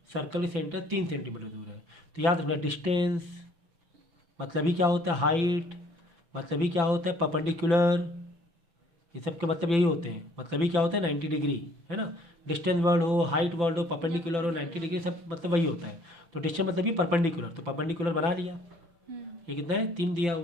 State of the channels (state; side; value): late; left; 5.9 ms